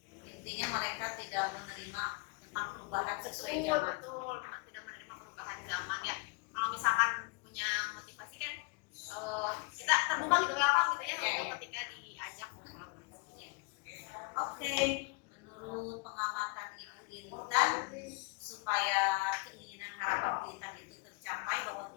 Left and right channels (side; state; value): right; quieter; 28.1 dB